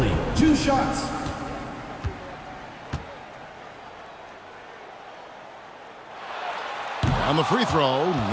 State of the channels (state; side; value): identical; both; correlation 1.00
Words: 2 shots. On the free throw,